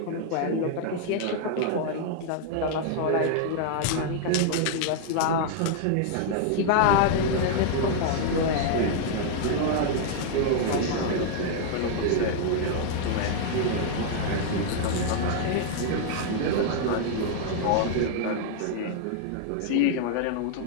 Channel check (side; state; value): both; different; correlation -0.01